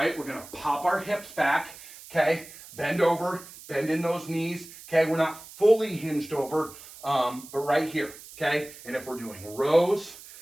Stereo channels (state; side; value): noise; right; hiss, 17 dB below the sound